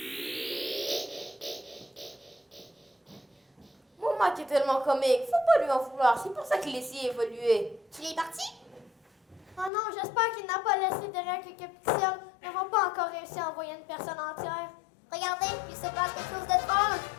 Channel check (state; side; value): drops out; right; at 9.7 s